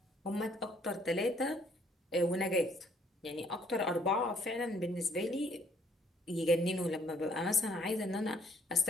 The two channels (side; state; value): both; normal; correlation 0.65